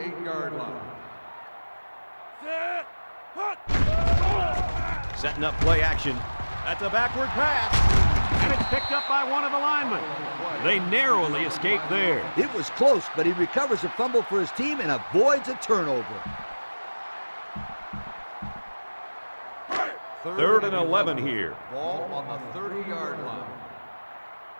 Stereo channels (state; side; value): inverted; both; correlation -1.00